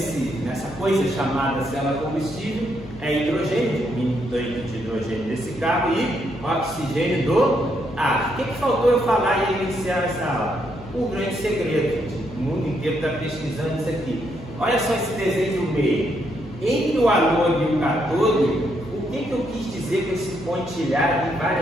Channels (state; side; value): noise; left; hum, 17 dB below the sound